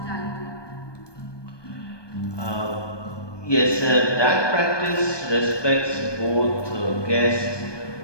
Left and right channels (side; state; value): right; late; 1.2 ms